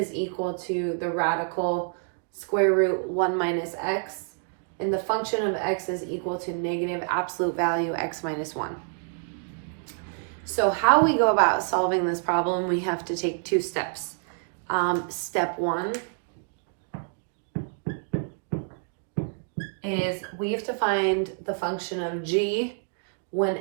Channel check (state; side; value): silent; left; 60 dB below the other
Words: equal to the radical square root 1 minus x, and the function of x is equal to negative absolute value x minus 1. So how we go about solving this problem, we have to take 2 steps. Step 1 is we have to find the function of g when